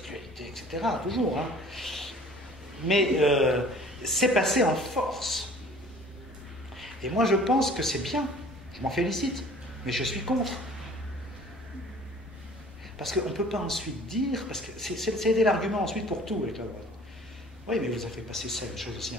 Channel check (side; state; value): both; normal; correlation 0.50